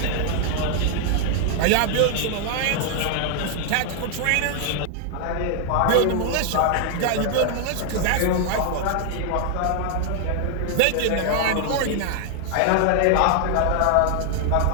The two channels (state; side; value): different; both; correlation 0.00